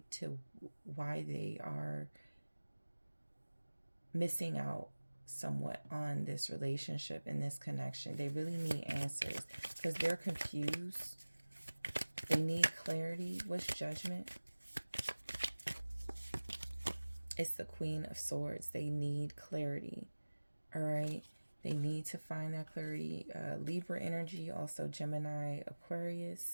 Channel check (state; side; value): inverted; both; correlation -1.00